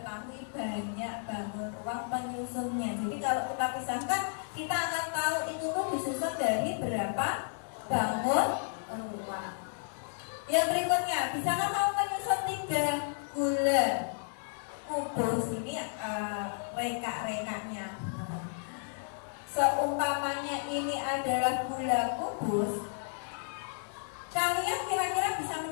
banyak bangun ruang penyusunnya. Jadi kalau kita pisahkan, kita akan tahu itu tuh disusun dari berapa bangun ruang. Yang berikutnya, bisakah kamu menyusun 3 gula kubus? Ini reka-rekanya. Seumpamanya ini adalah gula kubus, kalian kira-kira bisa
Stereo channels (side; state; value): right; silent; digital silence